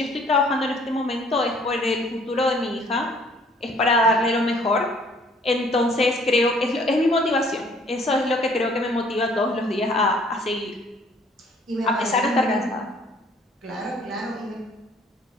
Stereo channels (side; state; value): both; normal; correlation 0.58